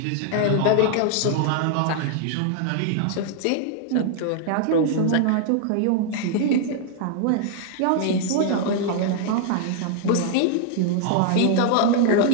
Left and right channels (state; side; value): different; both; correlation 0.00